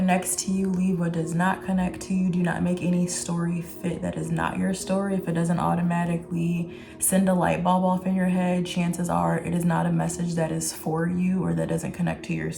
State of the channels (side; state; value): both; identical; correlation 1.00